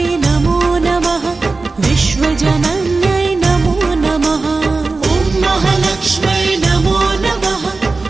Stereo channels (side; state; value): left; quieter; 3.8 dB